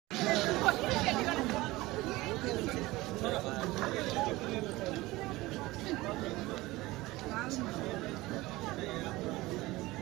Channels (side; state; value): left; quieter; 19.7 dB